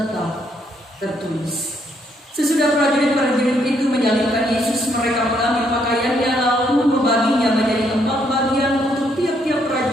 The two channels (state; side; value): normal; both; correlation 0.72